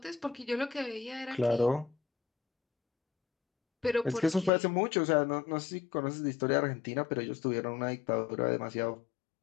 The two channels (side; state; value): right; drops out; at 4.5 s